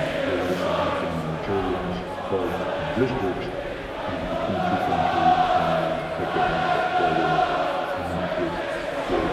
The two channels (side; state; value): both; identical; correlation 1.00